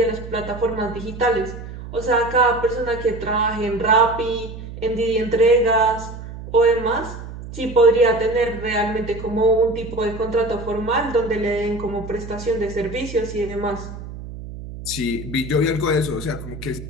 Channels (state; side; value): noise; right; hum, 11 dB below the sound